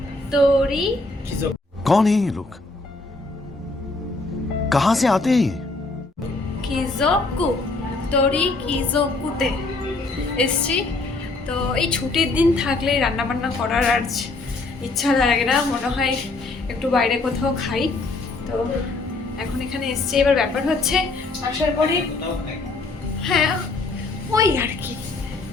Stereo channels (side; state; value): right; quieter; 3.3 dB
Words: তোরি कौन है ये लोग? कहां से आते हैं ये? কিজোকু, তোরি কিজোকুতে এসছি। তো এই ছুটির দিন থাকলে রান্না বান্না করার আর ইচ্ছা লাগে না, মনে হয় একটু বাইরে কোথাও খাই। তো এখন এখানে এসছি। এবার ব্যাপার হচ্ছে আসার পরে, হ্যাঁ ওই আর কি